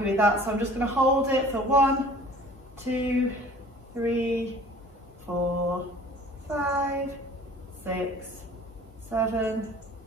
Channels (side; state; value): both; normal; correlation 0.48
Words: with that. So I'm just going to hold it for 1, 2, 3, 4, 5, 6, 7,